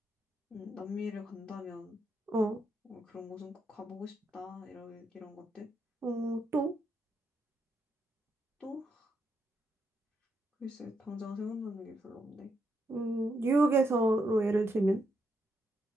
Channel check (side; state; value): both; normal; correlation 0.80